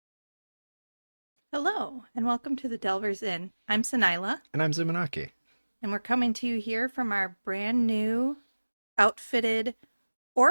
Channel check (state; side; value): inverted; both; correlation -1.00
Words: Hello, and welcome to the Delvers Inn. I'm Sanila, And I'm Zumanaki. and we're coming to you here from our brand new outfitted